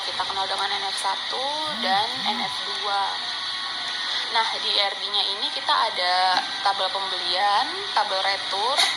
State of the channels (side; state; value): both; identical; correlation 1.00